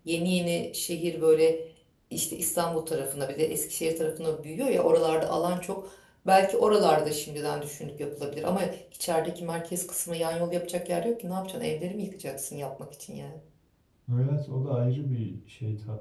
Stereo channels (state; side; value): identical; both; correlation 1.00